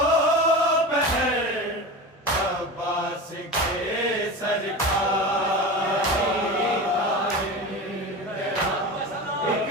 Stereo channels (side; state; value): both; normal; correlation 0.28